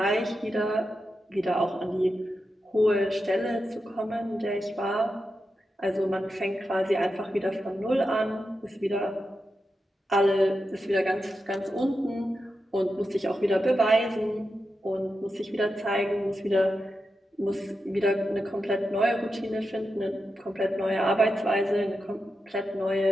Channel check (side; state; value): both; normal; correlation 0.88